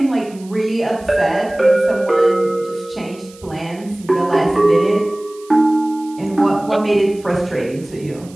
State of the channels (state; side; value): noise; right; hiss, 24 dB below the sound